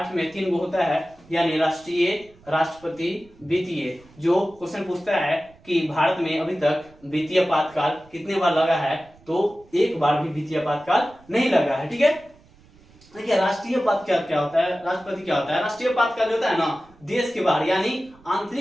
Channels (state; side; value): noise; right; rumble, 27 dB below the sound